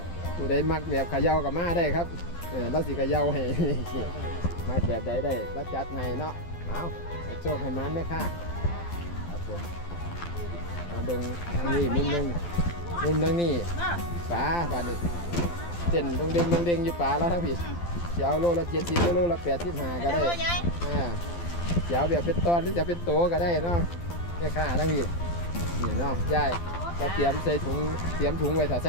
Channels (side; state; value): right; late; 12 ms